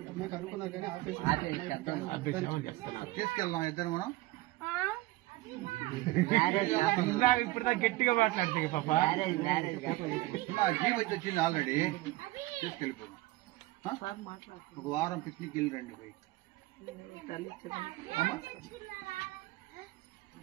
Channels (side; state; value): left; quieter; 19.1 dB